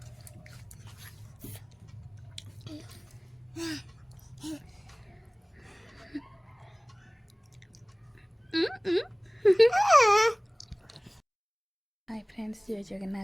hi friends, जय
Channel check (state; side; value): identical; both; correlation 1.00